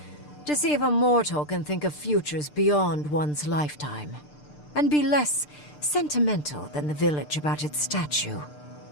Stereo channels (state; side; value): late; right; 6.7 ms